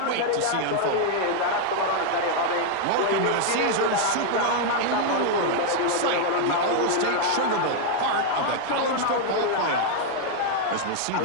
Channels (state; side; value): different; both; correlation 0.00